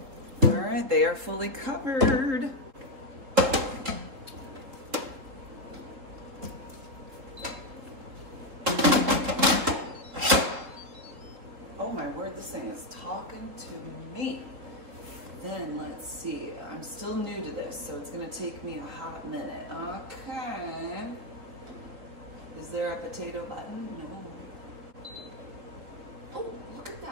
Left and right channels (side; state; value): left; late; 3.7 ms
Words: All right, they are fully covered. Oh my word, this thing is talking to me. then let's see, I'm still new to this, so it's gonna take me a hot minute. Okay. Is there a potato button? No. Oh, look at